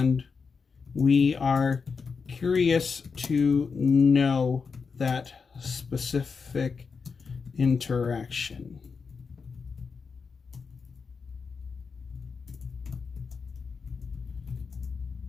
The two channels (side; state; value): right; quieter; 5.3 dB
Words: we are curious to know that specific interaction.